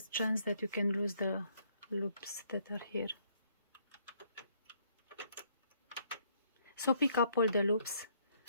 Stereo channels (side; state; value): both; inverted; correlation -0.67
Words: a chance that you can lose the loops that are here. So pick up all the loops